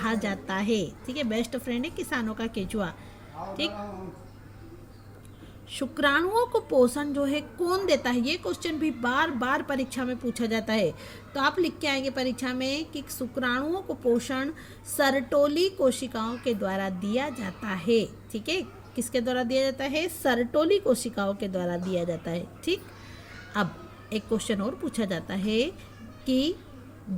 जाता है। ठीक है, बेस्ट फ्रेंड है किसानों का केचुआ। ठीक, शुक्राणुओं को पोषण जो है कौन देता है, ये क्वेश्चन भी बार बार परीक्षा में पूछा जाता है। तो आप लिख के आएंगे परीक्षा में कि शुक्राणुओं को पोषण सरटोली कोशिकाओं के द्वारा दिया जाता है। ठीक है, किसके द्वारा दिया जाता है? सरटोली कोशिकाओं के द्वारा दिया जाता है। ठीक, अब एक क्वेश्चन और पूछा जाता है कि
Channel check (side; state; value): both; identical; correlation 1.00